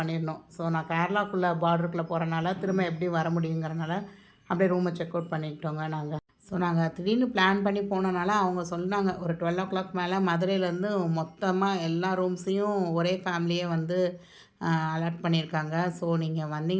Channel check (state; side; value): identical; both; correlation 1.00